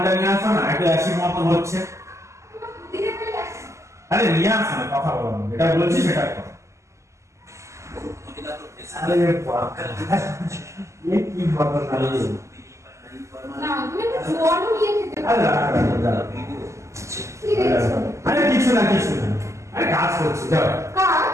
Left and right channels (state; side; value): late; left; 0.14 ms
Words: নিয়ে আসো না, একটু অ্যাসিড মতন হচ্ছে। আরে নিয়ে আসো না, কথা বলো না, এটা বলছি সেটা করো। আরে কি ঘটনা না, তুমি একটু জল নিয়ে খেতে পারো। আরে কিছু না, আরে কাজ করছি, যাও। কাজ?